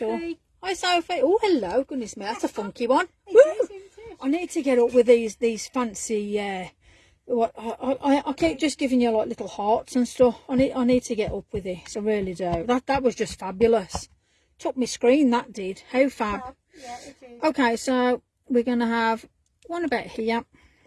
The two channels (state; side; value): identical; both; correlation 1.00